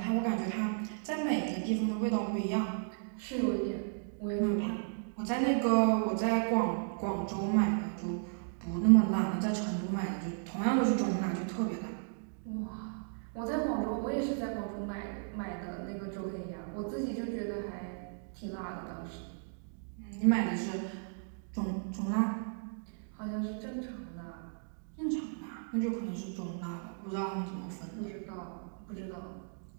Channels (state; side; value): silent; left; digital silence